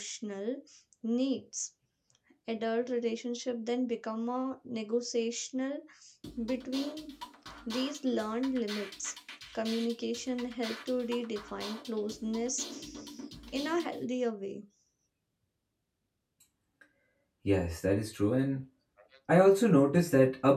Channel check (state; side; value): identical; both; correlation 1.00